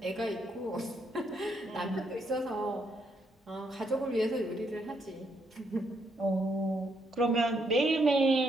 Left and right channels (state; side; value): normal; both; correlation 0.75